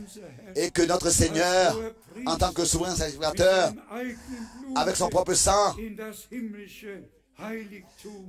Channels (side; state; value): both; identical; correlation 1.00